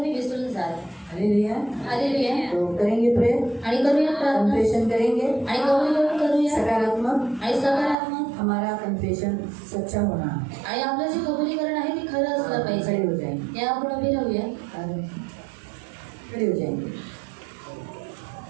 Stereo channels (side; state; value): left; drops out; at 8.0 s